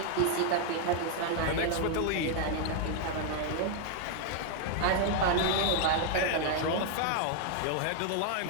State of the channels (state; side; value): different; both; correlation 0.00